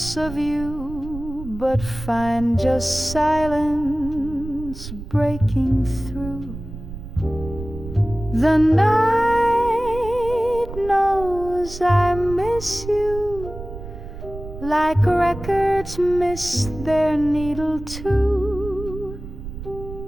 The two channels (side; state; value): right; noise; rumble, 11 dB below the sound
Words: of you, but find just silence breaking through. The night knows I miss you, like records miss their needle too.